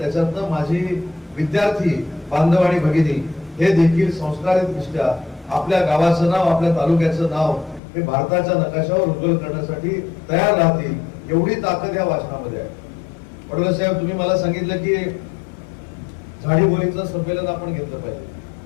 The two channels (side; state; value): right; drops out; at 7.8 s